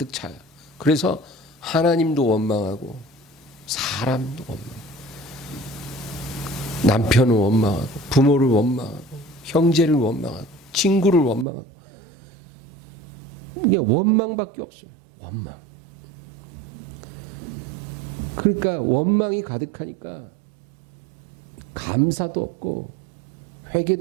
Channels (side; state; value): left; drops out; at 11.5 s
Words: 차요. 그래서 하나님도 원망하고 사람도 원망하고 남편을 원망하고 부모를 원망하고 형제를 원망하고 친구를 원망하고 이게 원망밖에 없어요. 원망. 그러니까 원망이 가득하니까 감사도 없고